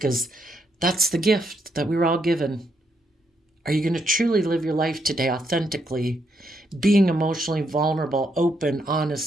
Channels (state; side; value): normal; both; correlation 0.77